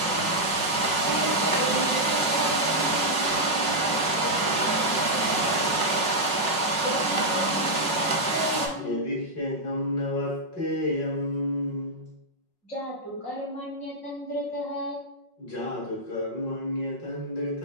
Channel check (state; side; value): late; right; 5.5 ms